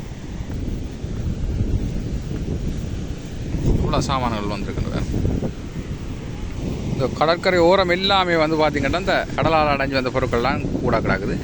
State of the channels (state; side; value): identical; both; correlation 1.00